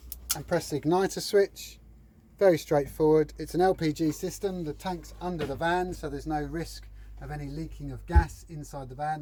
and press the igniter switch. Very straightforward. It's an LPG system. The tank's under the van, so there's no risk of any leaking of gas inside the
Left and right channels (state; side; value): identical; both; correlation 1.00